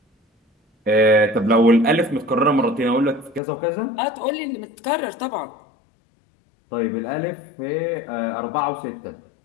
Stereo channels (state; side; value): drops out; right; at 3.4 s